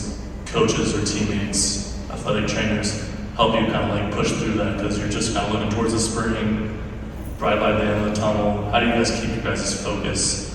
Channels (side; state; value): both; identical; correlation 1.00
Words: coaches or teammates, athletic trainers, help you kind of like push through that because you're just kind of looking towards the spring, bright light at the end of the tunnel? How do you guys keep your guys' focus